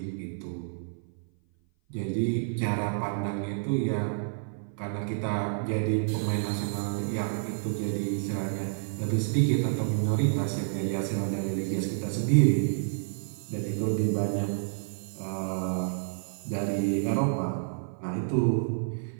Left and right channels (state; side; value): silent; left; 56 dB below the other